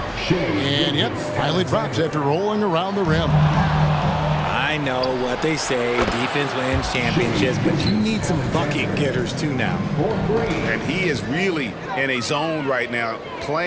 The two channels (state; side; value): identical; both; correlation 1.00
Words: And yep, finally drops after rolling around the rim. I know what they say, defense wins championships, but you need some bucket getters too now. And he is really in a zone right now,